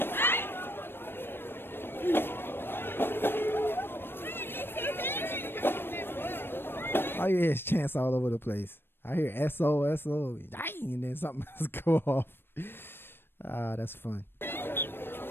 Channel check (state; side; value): late; right; 0.10 ms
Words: All you hear is chants all over the place. I hear SO, SO, and then something else go off. That's fun.